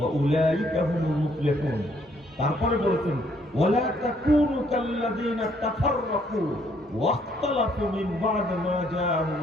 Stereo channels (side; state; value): both; normal; correlation 0.67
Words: উলাইকা হুমুল মুফলিহুন। তারপরে বলেছেন, ওয়ালা তাকুনু কাল্লাযীনা তাফাররাকু ওয়াখতালাফু মিন বা'দ মা